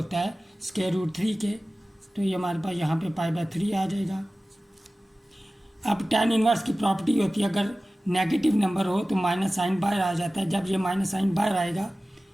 है √3 के। तो ये हमारे पास यहाँ पे π/3 आ जाएगा। अब tan इनवर्स की प्रॉपर्टी होती है, अगर नेगेटिव नंबर हो तो माइनस साइन बाहर आ जाता है। जब ये माइनस साइन बाहर आएगा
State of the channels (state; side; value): normal; both; correlation 0.96